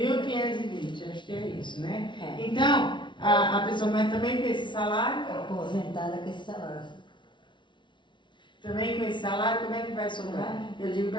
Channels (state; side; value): late; right; 0.24 ms